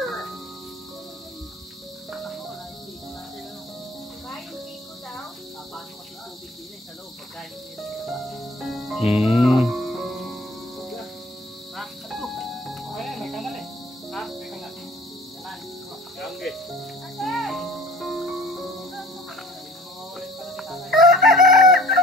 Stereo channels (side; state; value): both; normal; correlation 0.49